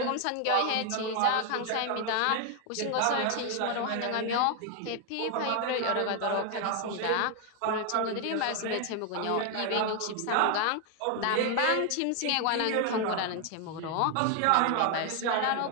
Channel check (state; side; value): different; both; correlation 0.00